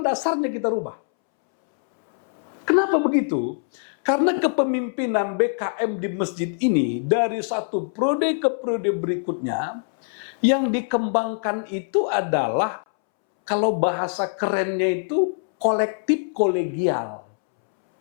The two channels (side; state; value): right; silent; 63 dB below the other